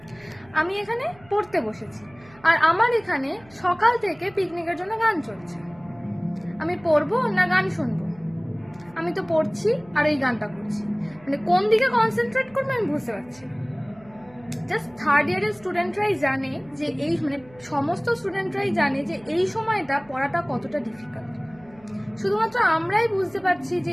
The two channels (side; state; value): right; noise; hum, 26 dB below the sound